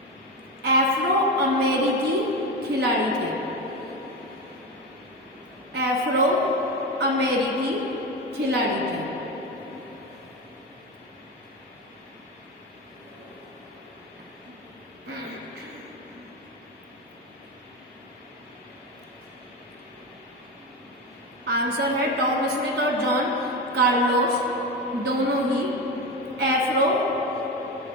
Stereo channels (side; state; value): both; normal; correlation 0.19